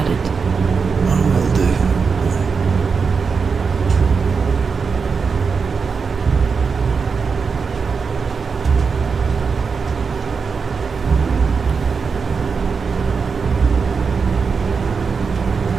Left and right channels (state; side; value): quieter; left; 5.3 dB